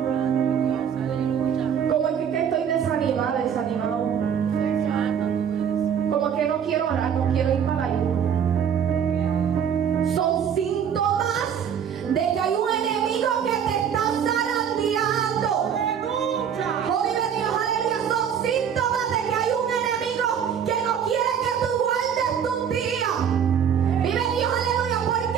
como que estoy desanimada, desanimado, como que no quiero orar, no quiero ir para la iglesia, son síntomas de que hay un enemigo que te está zarandeando. Oh, vive Dios, aleluya. Son síntomas de que hay un enemigo que no quiere que tú guardes tus días. Vive Dios, aleluya. ¿Por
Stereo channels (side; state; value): left; quieter; 8.1 dB